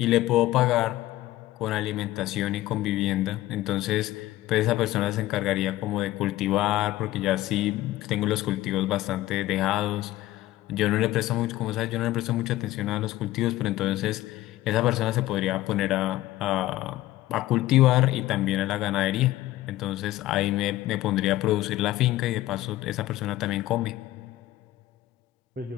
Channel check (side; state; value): right; quieter; 16.0 dB